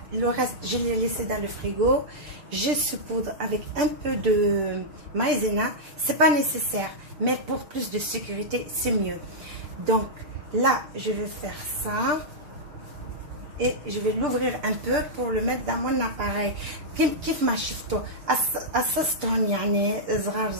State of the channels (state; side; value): late; left; 6.7 ms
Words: le reste je l'ai laissé dans le frigo. Je saupoudre avec un peu de maïzena, c'est pas nécessaire, mais pour plus de sécurité c'est mieux. Donc là je vais faire ça et je vais l'ouvrir un peu pour le mettre dans mon appareil. كيف ما شفتوا قصصتهم يعني صغار